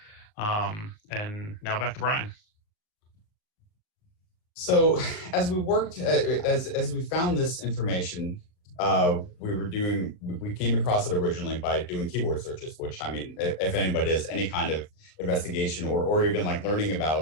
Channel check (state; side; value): late; right; 38 ms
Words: And now back to Brian. So as we worked, as we found this information, we came across it originally by doing keyword searches, which, I mean, if anybody does any kind of investigation or even like learning